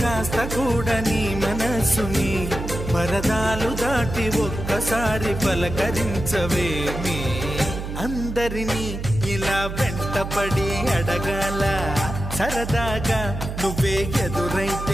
కూడా నీ మనసుని పరదాలు దాటి ఒక్కసారి పలకరించవేమి అందరినీ ఇలా వెంటపడి అడగాల సరదాగా నువ్వే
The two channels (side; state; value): right; noise; hum, 6 dB below the sound